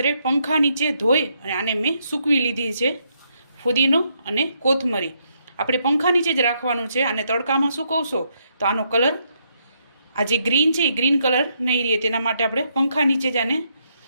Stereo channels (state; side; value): inverted; both; correlation -0.76